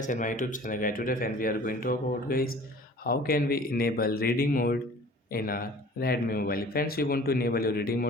and my YouTube channel guys. Today friends we are going to talk about guys how can we enable reading mode in our Redmi mobile. Friends, you want to enable your reading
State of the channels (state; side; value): normal; both; correlation 0.47